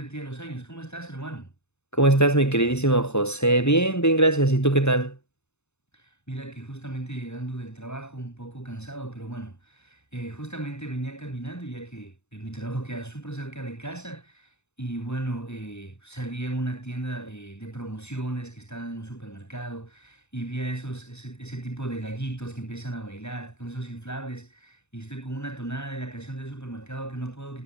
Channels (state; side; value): late; right; 0.81 ms